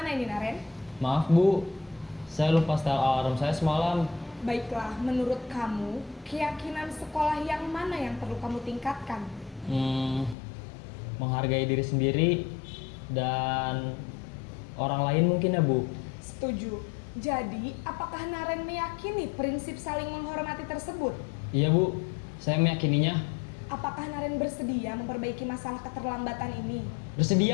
ini, Naren? Maaf, Bu. Saya lupa setel alarm saya semalam. Baiklah, menurut kamu, keyakinan sekolah yang mana yang perlu kamu tingkatkan? Menghargai diri sendiri dan orang lain mungkin ya Bu. Setuju. Jadi, apakah Naren meyakini prinsip saling menghormati tersebut? Iya Bu, saya meyakininya. Apakah Naren bersedia memperbaiki masalah keterlambatan ini?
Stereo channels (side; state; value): right; drops out; at 10.4 s